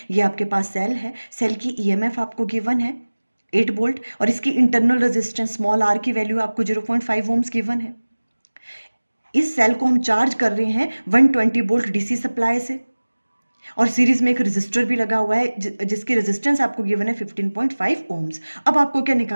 ये आपके पास सेल है, सेल की ईएमएफ आपको गिवन है 8 वोल्ट और इसकी इंटरनल रेजिस्टेंस स्मॉल आर की वैल्यू आपको 0.5 ओम्स गिवन है। इस सेल को हम चार्ज कर रहे हैं 120 वोल्ट डीसी सप्लाई से और सीरीज में एक रेजिस्टर भी लगा हुआ है जिसकी रेजिस्टेंस आपको गिवन है 15.5 ओम्स। अब आपको क्या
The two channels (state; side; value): inverted; both; correlation -1.00